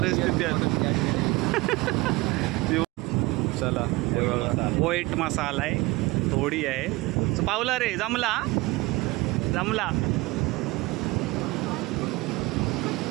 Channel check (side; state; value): left; quieter; 22.1 dB